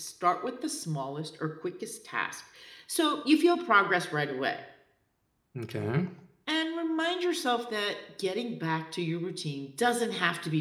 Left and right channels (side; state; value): both; identical; correlation 1.00